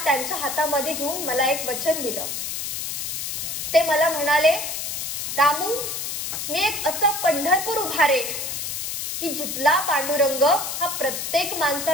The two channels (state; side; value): noise; left; hiss, 4 dB below the sound